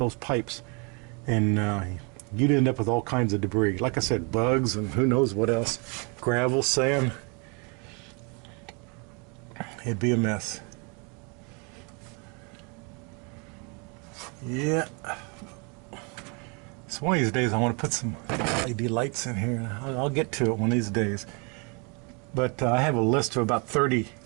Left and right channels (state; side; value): quieter; left; 33.3 dB